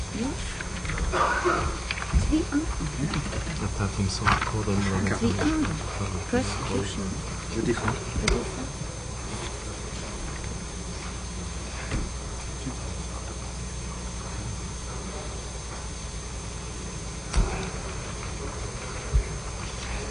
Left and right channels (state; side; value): identical; both; correlation 1.00